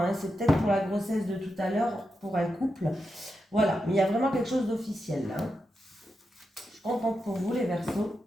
C'est peut-être pour la grossesse de tout à l'heure, pour un couple. Voilà, mais il y a vraiment quelque chose d'officiel là. Hein. Je suis contente pour vous, les Verseaux.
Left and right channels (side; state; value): both; normal; correlation 0.87